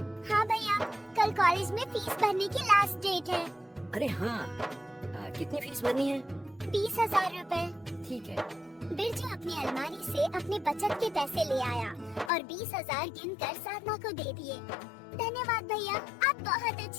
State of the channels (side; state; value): right; drops out; at 12.3 s